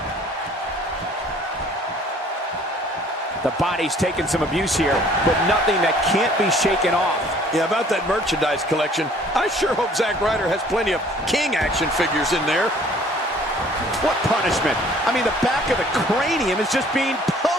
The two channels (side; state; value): both; normal; correlation 0.55